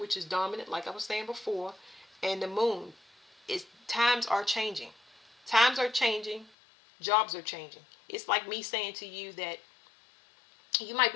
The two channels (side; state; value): right; drops out; at 6.5 s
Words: is dominant, like I was saying before, and the moon. Times are changing. Times are changing. Jobs are changing. It's like me saying to you that you might